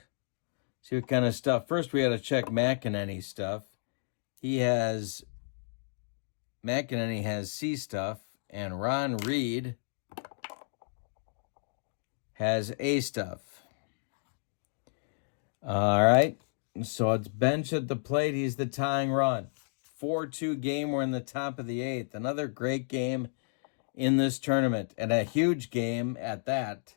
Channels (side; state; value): right; silent; digital silence